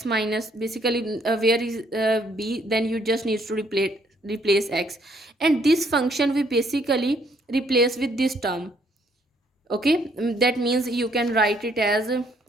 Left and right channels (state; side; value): normal; both; correlation 0.67